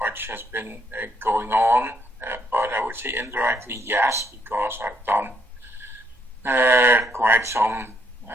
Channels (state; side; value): normal; both; correlation 0.71